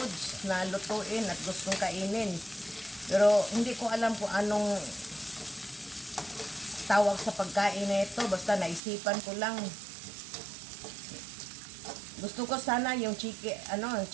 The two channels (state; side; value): drops out; left; at 8.8 s